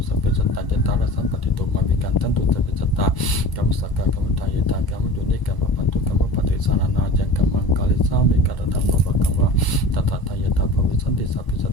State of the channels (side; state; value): right; late; 1.0 ms